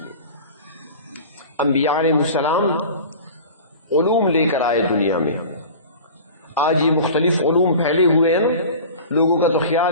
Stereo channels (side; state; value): both; inverted; correlation -0.38